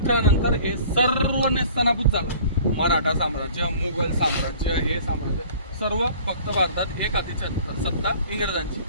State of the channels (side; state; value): both; inverted; correlation -0.49